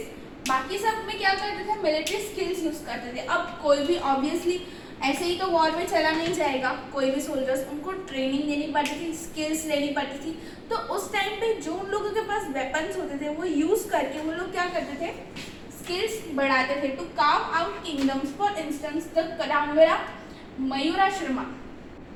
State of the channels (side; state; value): both; identical; correlation 1.00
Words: बाकी सब में क्या करते थे, मिलिट्री स्किल्स यूज करते थे। अब कोई भी ऑब्वियसली ऐसे ही तो वॉर में चला नहीं जाएगा, कोई भी सोल्जर्स, उनको ट्रेनिंग देनी पड़ती थी, स्किल्स लेनी पड़ती थी। तो उस टाइम पे जो उन लोगों के पास वेपन्स होते थे वो यूज करके वो लोग क्या करते थे, स्किल्स बढ़ाते थे। To carve out kingdoms, for instance the Kadamba Mayurasharma